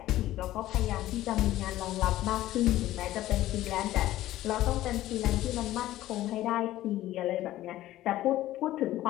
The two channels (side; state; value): right; quieter; 14.8 dB